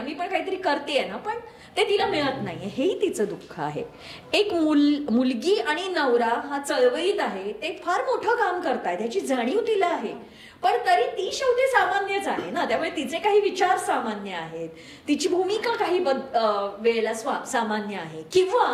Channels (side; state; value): both; identical; correlation 1.00